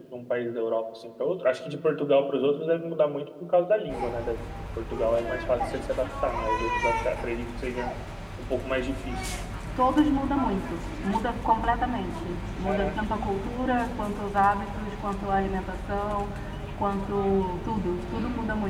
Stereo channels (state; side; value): identical; both; correlation 1.00